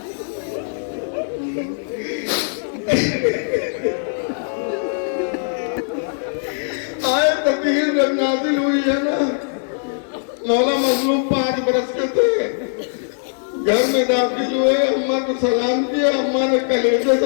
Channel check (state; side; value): silent; right; digital silence